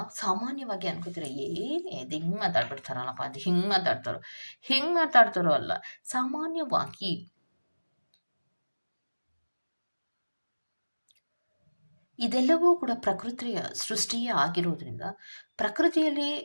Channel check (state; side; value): inverted; both; correlation -1.00